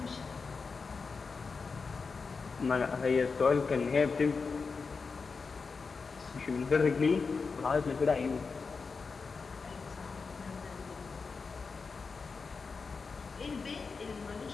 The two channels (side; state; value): right; quieter; 4.8 dB